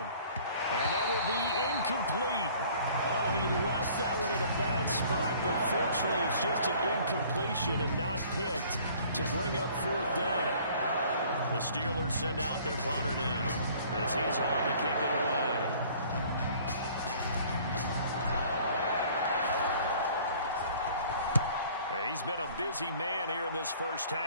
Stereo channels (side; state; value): both; inverted; correlation -0.53